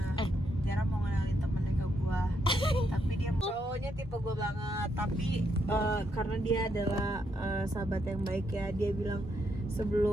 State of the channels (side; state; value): both; normal; correlation 0.78